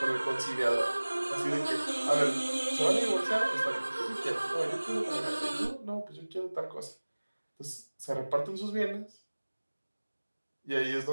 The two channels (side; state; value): both; inverted; correlation -1.00